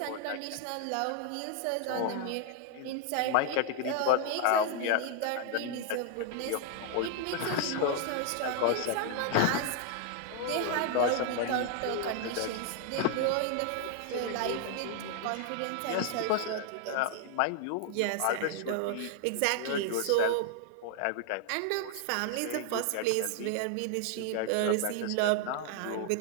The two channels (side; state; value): both; different; correlation 0.00